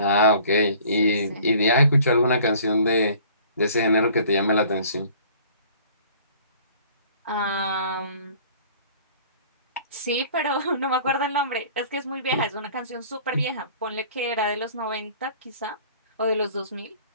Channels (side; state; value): both; inverted; correlation -0.51